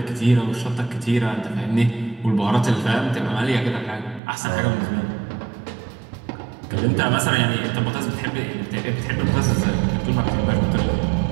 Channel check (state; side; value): drops out; left; at 4.2 s